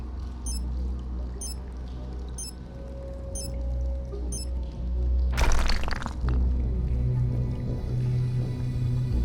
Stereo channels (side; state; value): both; identical; correlation 1.00